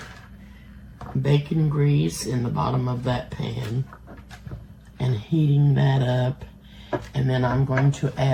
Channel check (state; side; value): identical; both; correlation 1.00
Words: bacon grease in the bottom of that pan and heating that up. And then I'm going to